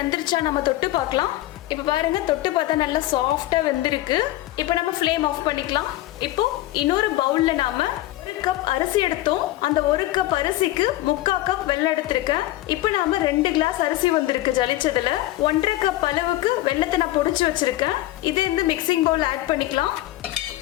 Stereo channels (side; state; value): right; quieter; 15.9 dB